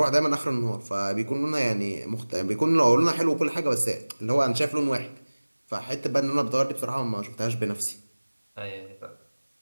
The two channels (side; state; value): both; inverted; correlation -1.00